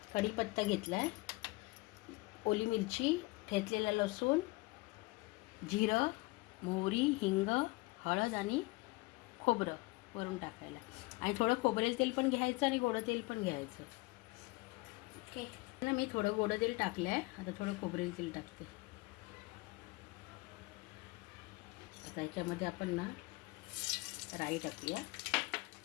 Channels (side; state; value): right; quieter; 23.6 dB